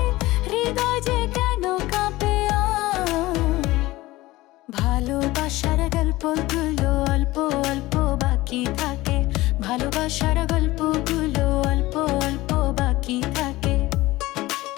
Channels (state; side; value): quieter; right; 18.6 dB